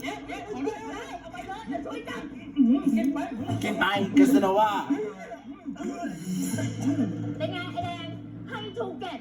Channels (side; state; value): both; identical; correlation 1.00